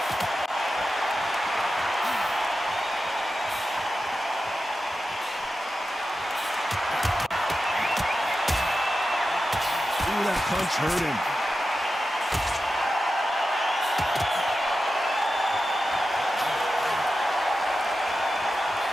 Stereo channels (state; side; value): normal; both; correlation 0.91